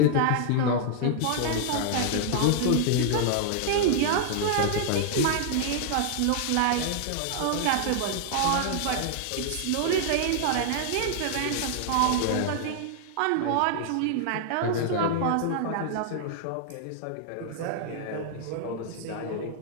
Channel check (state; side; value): different; both; correlation -0.01